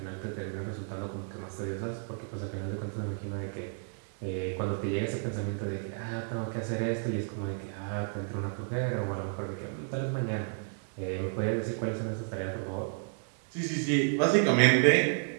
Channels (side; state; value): left; silent; 57 dB below the other